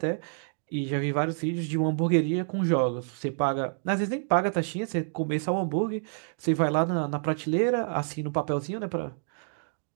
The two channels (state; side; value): silent; left; digital silence